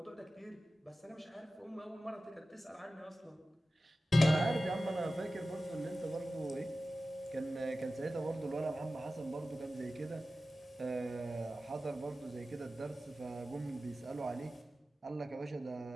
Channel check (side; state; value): both; normal; correlation 0.95